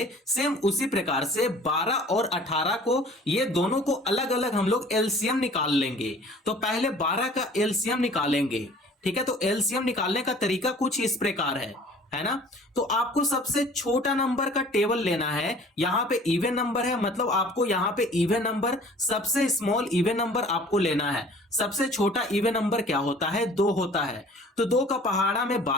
सेम उसी प्रकार से 12 और 18 को, ये दोनों को अलग अलग हम लोग एलसीएम निकाल लेंगे। तो पहले 12 का एलसीएम निकालेंगे, ठीक है। तो एलसीएम निकालने का तरीका कुछ इस प्रकार है ना। तो आपको सबसे छोटा नंबर का टेबल लेना है। यहां पे इवन नंबर है, मतलब आपको यहां पे इवन नंबर, सबसे स्मॉल इवन नंबर आपको लेना है। सबसे छोटा इवन नंबर क्या होता है? 2 होता है। तो 2 का पहाड़ा में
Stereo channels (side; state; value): both; normal; correlation 0.49